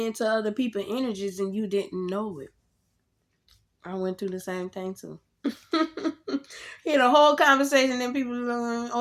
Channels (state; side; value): identical; both; correlation 1.00